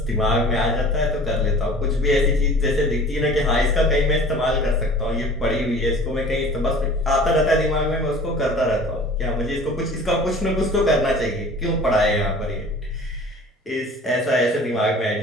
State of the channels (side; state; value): both; normal; correlation 0.44